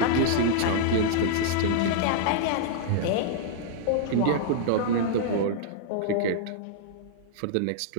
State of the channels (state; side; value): different; both; correlation -0.01